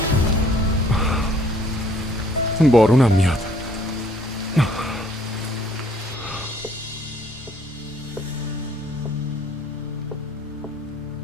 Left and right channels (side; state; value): both; normal; correlation 0.60